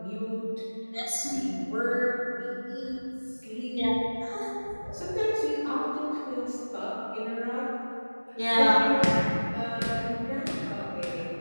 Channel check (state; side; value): inverted; both; correlation -1.00